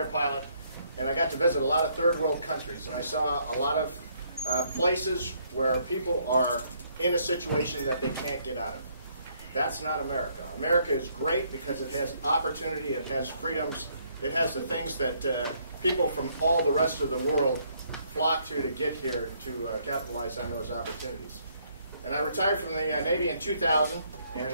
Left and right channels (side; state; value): both; inverted; correlation -0.69